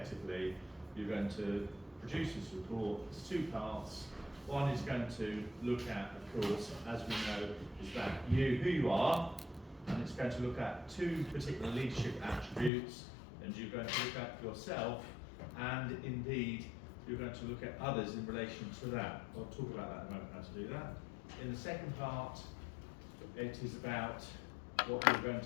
you're going to produce this report. There's two parts. One is going to look at, of course, as we know, is that who you are, and it's going to look at two particular leadership attributes, and you're going to look at yourself, and indeed you're going to look at others in relation to that. I'll talk about that in a moment, how to do that. In the second part, it is about what you're going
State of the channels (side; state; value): right; drops out; at 12.7 s